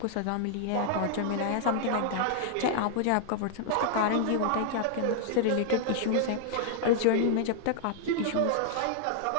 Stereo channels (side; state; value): both; different; correlation 0.00